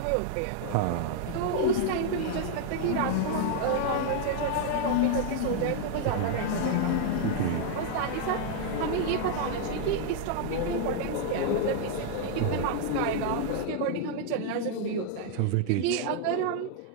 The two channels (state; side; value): different; both; correlation 0.00